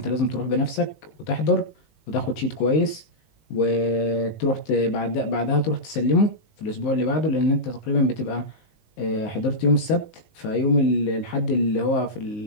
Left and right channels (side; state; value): right; late; 19 ms